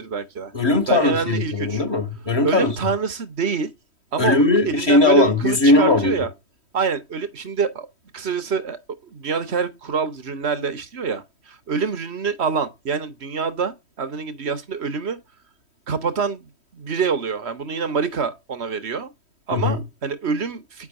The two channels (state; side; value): late; left; 3.1 ms